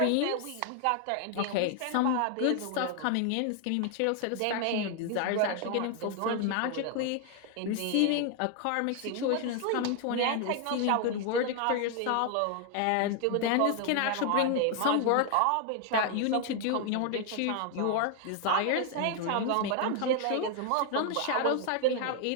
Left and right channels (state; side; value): different; both; correlation 0.00